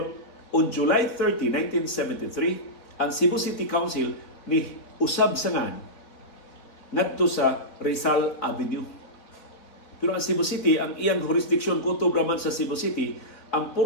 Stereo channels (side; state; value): right; late; 4.0 ms